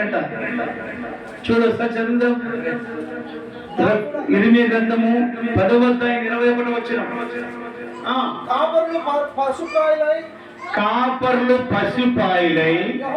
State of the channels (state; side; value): identical; both; correlation 1.00